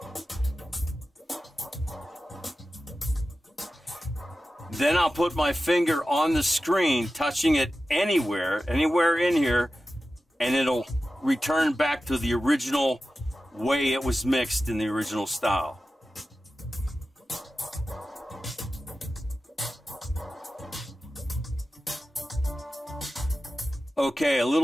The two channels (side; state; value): both; normal; correlation 0.94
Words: then I'll put my finger on the screen, touching it anywhere in here, and it'll return back to the original way it was mixed in the original style. Okay, a